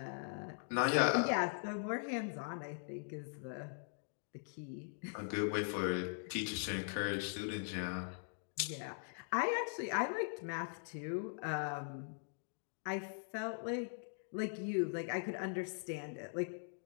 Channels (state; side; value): silent; right; digital silence